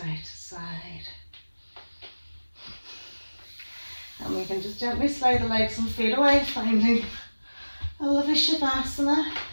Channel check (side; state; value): both; inverted; correlation -1.00